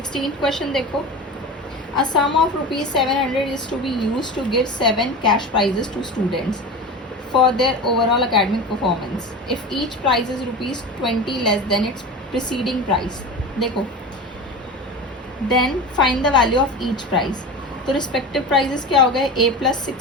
question देखो, a sum of rupees 700 is to be used to give 7 cash prizes to students for their overall academic performance if each prize is rupees 20 less than its preceding price। देखो, then find the value of each prize। तो respective prizes क्या हो गए, a plus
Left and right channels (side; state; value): both; normal; correlation 0.29